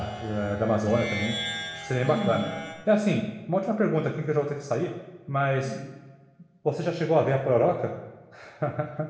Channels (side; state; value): both; identical; correlation 1.00